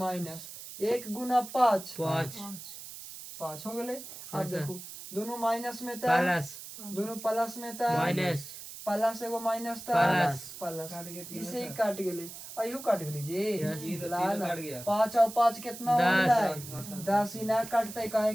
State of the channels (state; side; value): noise; right; hiss, 12 dB below the sound